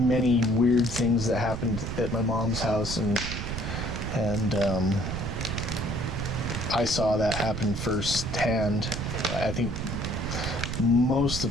weird things that happened at my mom's house, and I saw that happen firsthand. I think most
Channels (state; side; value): noise; right; rumble, 5 dB below the sound